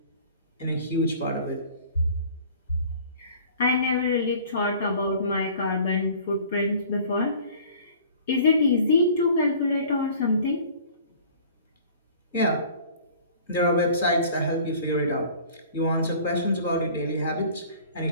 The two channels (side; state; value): both; inverted; correlation -0.48